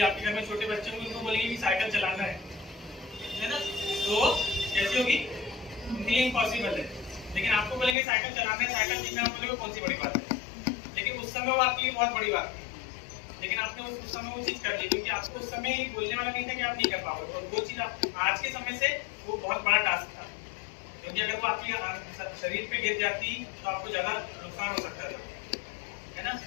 आपके घर में छोटे बच्चे होंगे उनको बोलेंगे कि साइकिल चलाना है ना, तो कैसी होगी, उनके लिए इम्पॉसिबल है। लेकिन आपको बोलेंगे साइकिल चलाना है, साइकिल सीखना, बोलेंगे कौन सी बड़ी बात है। लेकिन उस समय वो आपके लिए बहुत बड़ी बात थी, लेकिन आपने उस समय वो चीज कर ली, क्योंकि आपको उस समय ये बोलने वाला नहीं था कि आप नहीं कर पाओगे। और वो चीज आज के समय से वो बहुत बड़ा टास्क था, क्योंकि अगर वो आपके शरीर पे गिर जाती तो आपको ज्यादा नुकसान हो सकता था, है ना।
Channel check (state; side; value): drops out; right; at 8.0 s